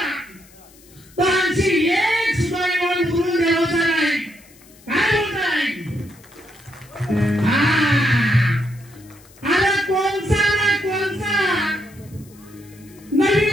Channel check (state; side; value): noise; left; hiss, 26 dB below the sound